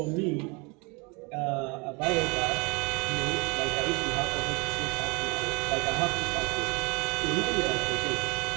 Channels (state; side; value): quieter; left; 29.1 dB